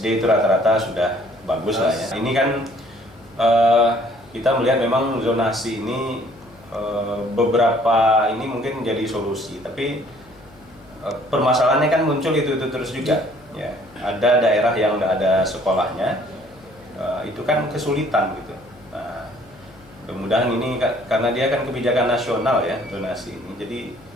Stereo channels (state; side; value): noise; left; hum, 25 dB below the sound